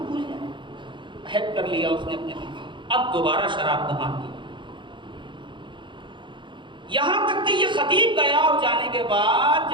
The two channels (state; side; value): late; left; 0.23 ms